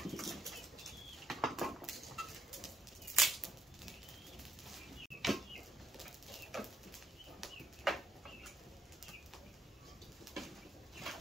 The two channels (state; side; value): normal; both; correlation 0.75